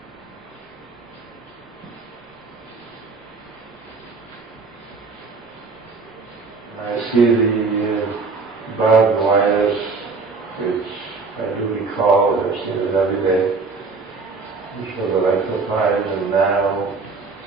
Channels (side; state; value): left; quieter; 4.3 dB